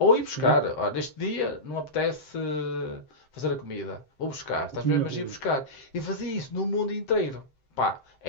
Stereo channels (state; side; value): late; right; 7.7 ms